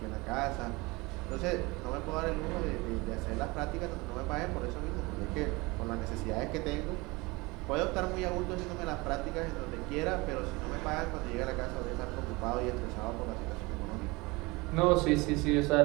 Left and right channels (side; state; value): left; quieter; 24.1 dB